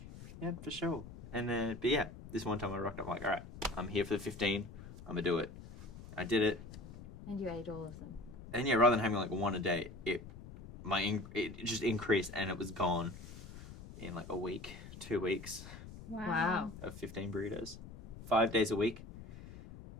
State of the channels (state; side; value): noise; left; rumble, 14 dB below the sound